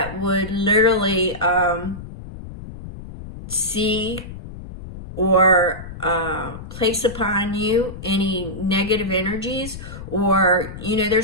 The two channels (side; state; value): left; noise; rumble, 12 dB below the sound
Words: would literally see or place upon you any negative energies, or,